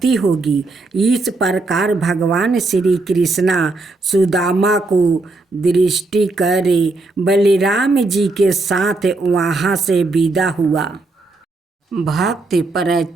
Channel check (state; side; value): quieter; left; 3.3 dB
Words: होगी। इस प्रकार भगवान श्री कृष्णा सुदामा को दृष्टि करे बलराम जी के साथ वहाँ से विदा हुआ। भक्त